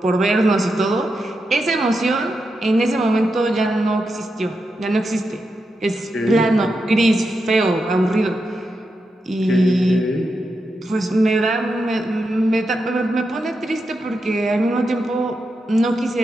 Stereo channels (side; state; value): both; normal; correlation 0.87